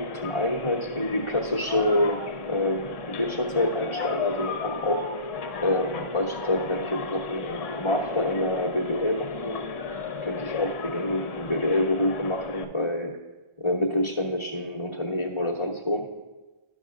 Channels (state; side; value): late; right; 1.4 ms